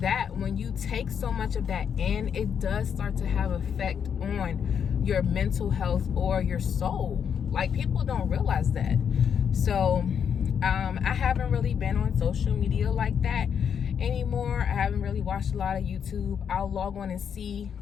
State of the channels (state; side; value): quieter; right; 7.6 dB